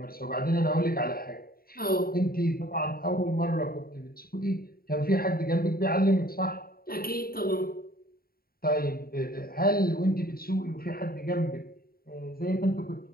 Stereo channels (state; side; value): late; right; 0.43 ms